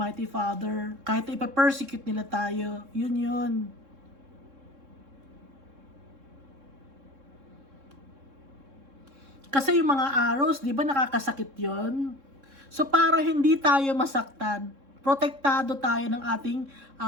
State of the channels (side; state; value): left; late; 3.7 ms